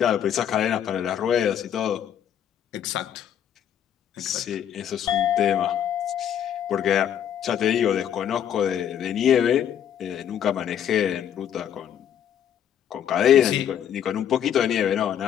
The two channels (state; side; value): quieter; right; 9.5 dB